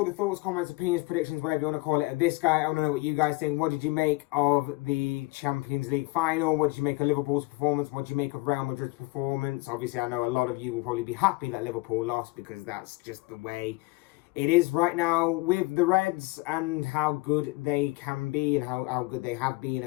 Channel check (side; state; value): right; quieter; 22.4 dB